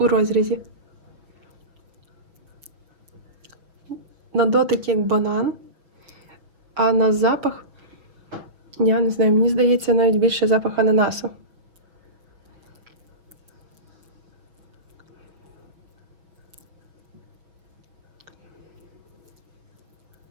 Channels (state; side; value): late; left; 6.0 ms